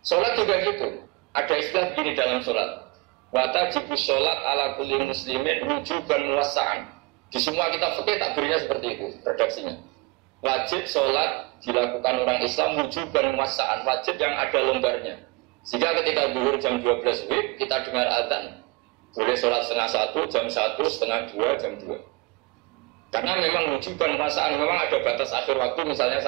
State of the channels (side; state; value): left; quieter; 26.7 dB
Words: Sholat juga gitu. Ada istilah begini dalam sholat. Watajibus sholat ala kulli muslimin wujuban muwassa'an. Di semua kitab fikih takbirnya seperti itu redaksinya. Wajib sholat dilakukan orang Islam wujuban muwassa'an, wajib yang ada longgarnya. Sehingga ketika zuhur jam 12 WIB kita dengar azan, boleh sholat setengah 1, jam 1, setengah 2, jam 2. Karena memang wujuban muwassa'an, memang ada batas akhir waktu misalnya